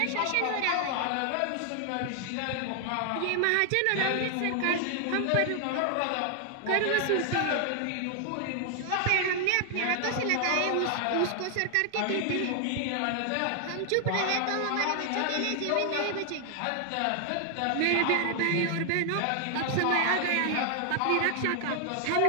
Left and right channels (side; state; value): both; different; correlation 0.00